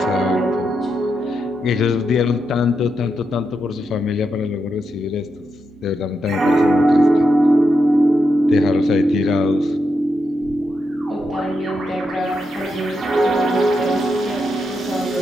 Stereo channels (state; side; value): normal; both; correlation 0.84